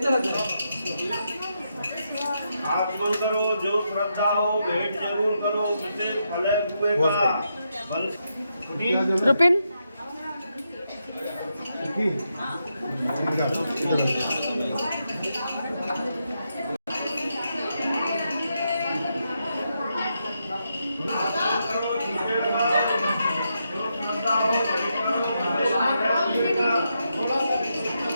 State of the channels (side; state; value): both; inverted; correlation -0.83